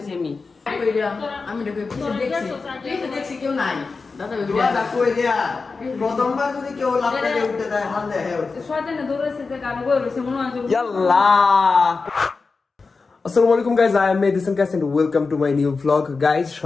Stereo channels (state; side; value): quieter; right; 4.3 dB